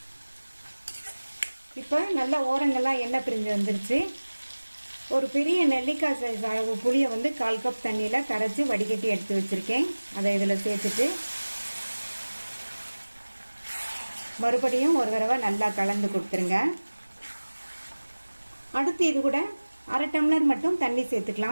இப்போ நல்ல ஓரங்கள்லாம் எண்ணெய் பிரிஞ்சு வந்துருச்சு. ஒரு பெரிய நெல்லிக்காய் சைஸ் அளவு புளியை வந்து 1/4 கப் தண்ணியில் கரைச்சி வடிகட்டி எடுத்து வச்சுருக்கேன். அதை இதில் சேர்த்துட்டு மறுபடியும் ஒரு தடவை நல்லா கலந்து கொடுத்துருங்க. அடுத்து இது கூட 1/2 டம்ளர் மட்டும் தண்ணி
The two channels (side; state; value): both; inverted; correlation -1.00